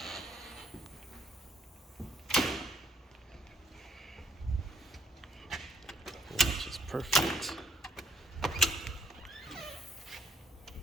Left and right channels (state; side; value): normal; both; correlation 0.68